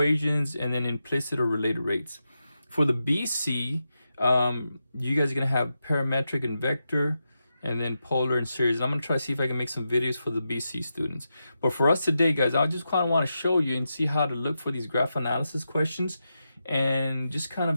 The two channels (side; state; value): both; inverted; correlation -0.88